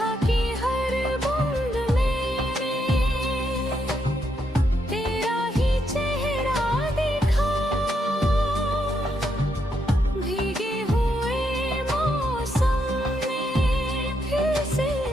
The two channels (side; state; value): both; normal; correlation 0.78